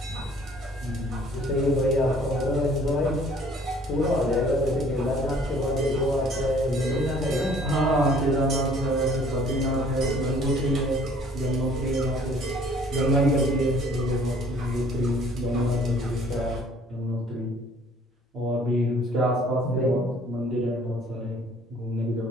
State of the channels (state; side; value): normal; both; correlation 0.56